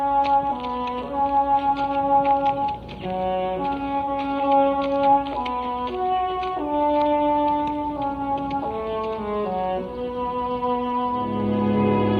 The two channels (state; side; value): identical; both; correlation 1.00